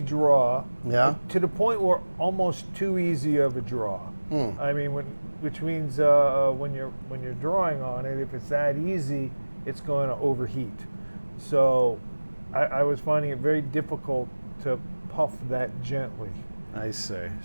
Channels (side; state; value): both; inverted; correlation -1.00